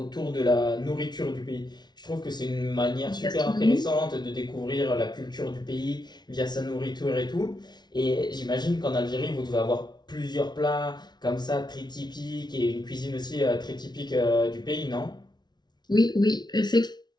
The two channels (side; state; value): right; late; 0.20 ms